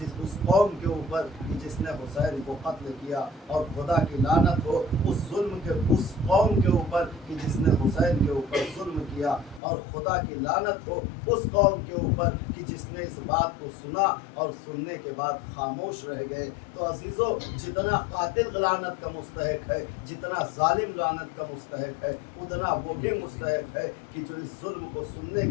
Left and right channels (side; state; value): right; drops out; at 9.6 s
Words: اس قوم کے اوپر کہ جس نے حسین کو قتل کیا، اور خدا کی لعنت ہو اس قوم کے اوپر کہ جس نے حسین کے اوپر ظلم کیا، اور خدا کی لعنت ہو اس قوم کے اوپر کہ جس نے اس بات کو سنا اور سننے کے بعد خاموش رہ گئے۔ تو عزیزو، جتنا قاتل لعنت کا مستحق ہے، جتنا ظالم لعنت کا مستحق ہے، اتنا وہ بھی مستحق ہے کہ جو اس ظلم کو سننے